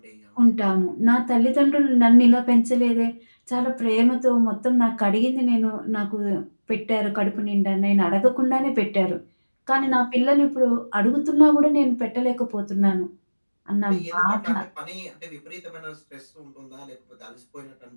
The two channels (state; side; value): inverted; both; correlation -1.00